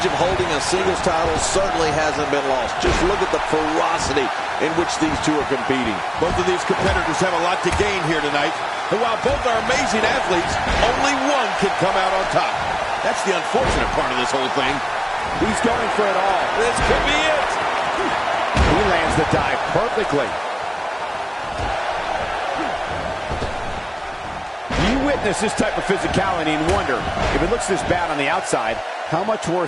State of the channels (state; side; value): identical; both; correlation 1.00